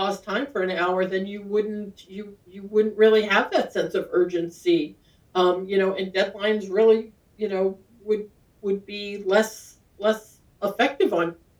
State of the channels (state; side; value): identical; both; correlation 1.00